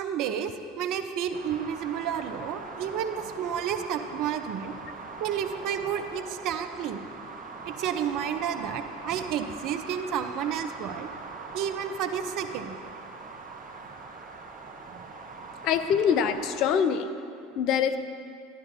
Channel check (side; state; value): both; normal; correlation 0.33